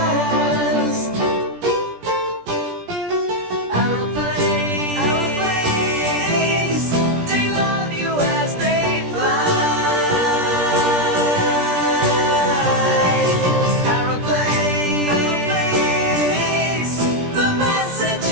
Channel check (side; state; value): left; late; 17 ms